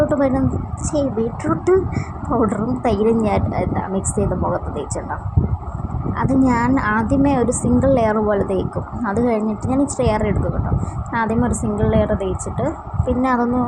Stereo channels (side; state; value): both; identical; correlation 1.00